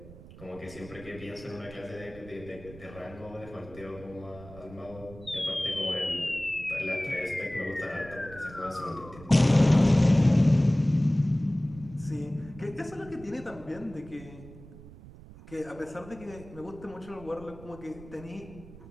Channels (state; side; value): noise; right; rumble, 18 dB below the sound